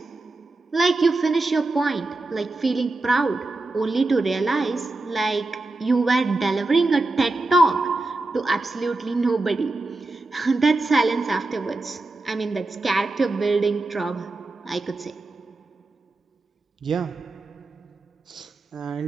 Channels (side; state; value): left; quieter; 3.1 dB